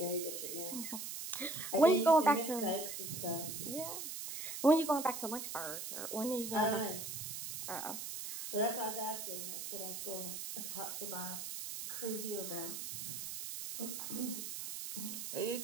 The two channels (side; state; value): right; noise; hiss, 6 dB below the sound